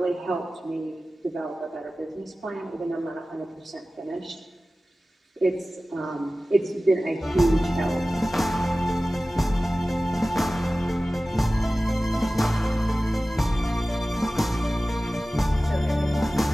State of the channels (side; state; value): both; normal; correlation 0.96